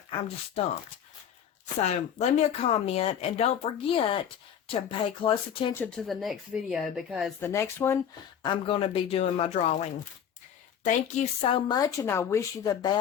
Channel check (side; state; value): right; quieter; 8.8 dB